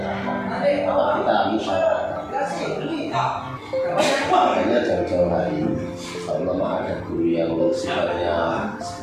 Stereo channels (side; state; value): both; identical; correlation 1.00